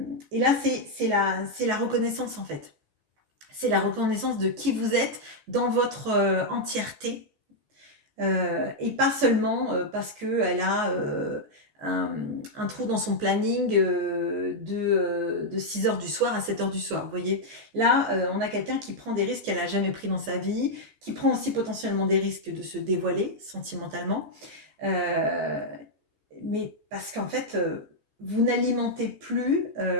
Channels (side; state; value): left; late; 14 ms